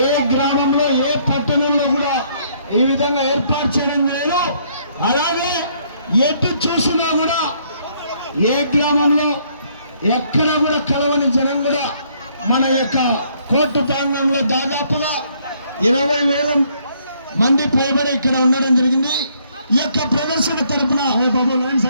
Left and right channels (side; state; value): both; inverted; correlation -0.67